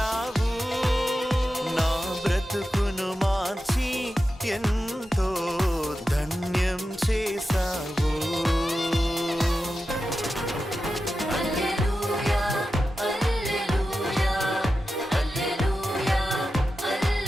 నా బ్రతుకును మార్చి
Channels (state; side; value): normal; both; correlation 0.91